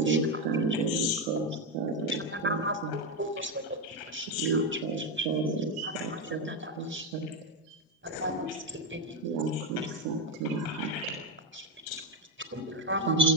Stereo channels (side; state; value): both; normal; correlation 0.09